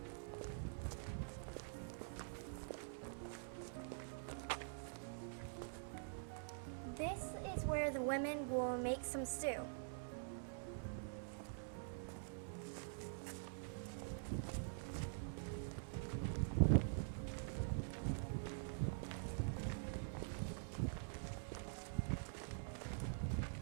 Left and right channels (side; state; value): left; silent; digital silence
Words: This is where the women will make some stew.